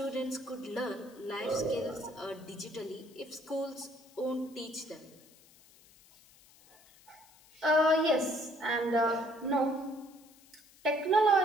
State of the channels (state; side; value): noise; left; hiss, 26 dB below the sound